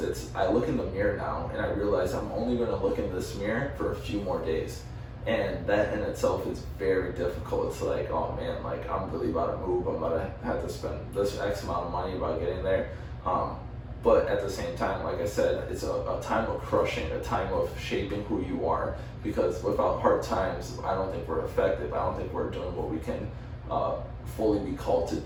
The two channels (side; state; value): both; identical; correlation 1.00